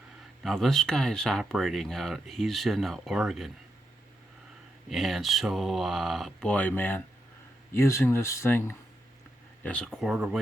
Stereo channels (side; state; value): both; normal; correlation 0.84